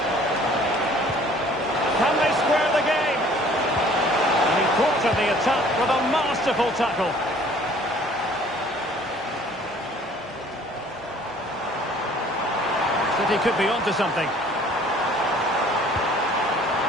Can they square the game? And he thwarted the attack with a masterful tackle. City could be onto something.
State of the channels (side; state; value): both; normal; correlation 0.54